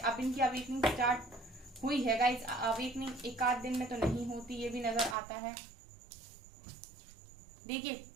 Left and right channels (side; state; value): left; drops out; at 5.2 s